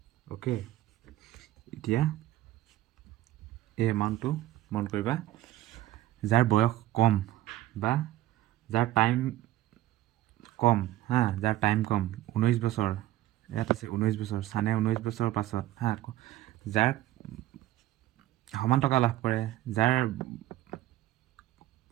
অ'কে, এতিয়া এই এমাউণ্টটো মন কৰিবা। যাৰ বয়স কম বা যাৰ টাইম কম হা, যাৰ টাইম কম 19 বছৰ, ইয়াত আছে 19 বছৰ, ছানে 19 বছৰৰ পাছত হা, যাৰ সমান টকা লাভ কৰে, যাৰ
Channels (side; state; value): left; quieter; 15.0 dB